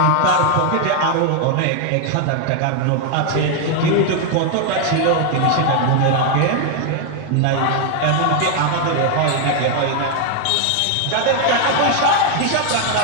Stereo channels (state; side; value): different; both; correlation 0.00